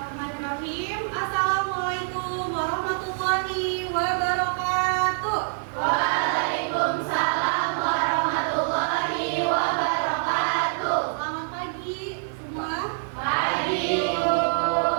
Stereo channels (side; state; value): left; silent; digital silence